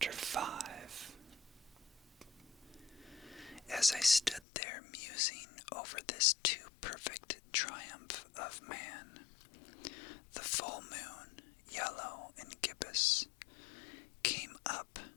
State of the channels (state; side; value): drops out; right; at 4.4 s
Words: 5. As I stood there musing over this too perfect triumph of man, the full moon, yellow and gibbous, came up